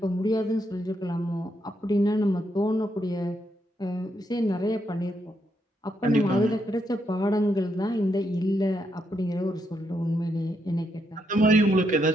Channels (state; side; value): normal; both; correlation 0.79